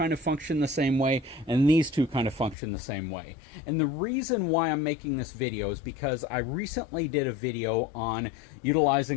of function the same way, and these 2 kind of function the same way. And the reason why I'm making this video is because I recently did a video on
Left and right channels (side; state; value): right; drops out; at 2.6 s